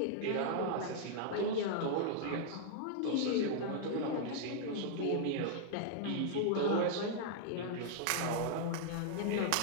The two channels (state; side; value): different; both; correlation -0.01